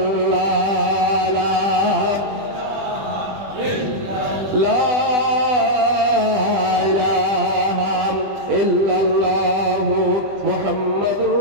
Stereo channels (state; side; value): late; left; 20 ms